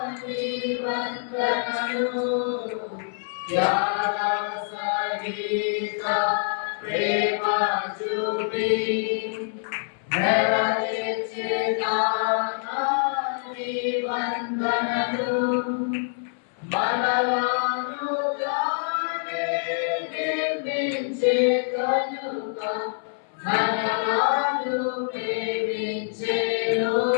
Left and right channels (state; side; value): silent; right; 61 dB below the other